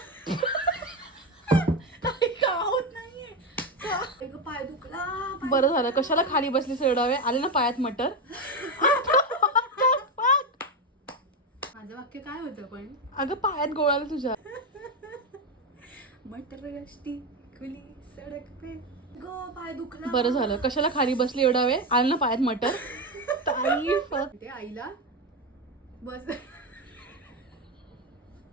पाय दुखला. बरं झालं. कशाला खाली बसली सोडावे? आले ना पायात मटर. माझं वाक्य काय होतं पण? अगं पायात गोळाला तुझ्या. मटर गश्ती खुली सडक पे गो पाय दुखला. बरं झालं. कशाला खाली बसली एवढा वेळ? आले ना पायात मटर. ते आईला बस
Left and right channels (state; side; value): normal; both; correlation 0.13